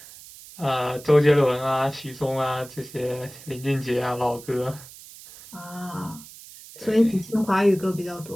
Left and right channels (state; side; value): noise; right; hiss, 18 dB below the sound